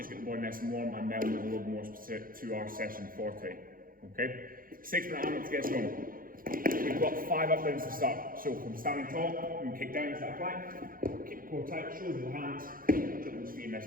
get the body nice and warm, and then we'll move a little more specific to our session for today. Okay, 6-minute AMRAP to get us going. We've got 5 up downs to start. So from standing tall, we can kick down to that plank, keep the core tight, shoulders with the hands, jump those feet, nice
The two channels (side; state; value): left; late; 0.41 ms